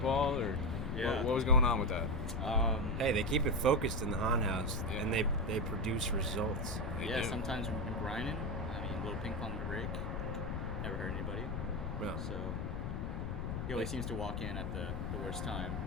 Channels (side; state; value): left; noise; rumble, 2 dB below the sound